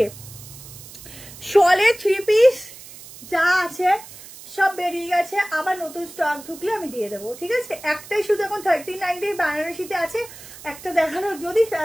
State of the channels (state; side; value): noise; right; hiss, 17 dB below the sound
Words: শলে 3 পিস যা আছে সব বেরিয়ে গেছে, আবার নতুন স্টক ঢুকলে আমি দিয়ে দেবো, ঠিক আছে। একটাই শুধু এখন 39 বেনারসিতে আছে, একটা দেখানো, যদি